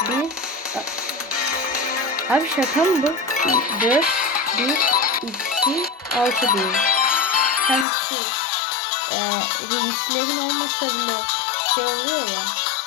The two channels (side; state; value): right; drops out; at 7.9 s